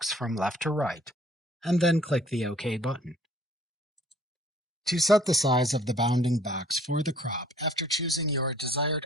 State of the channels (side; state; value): both; normal; correlation 0.56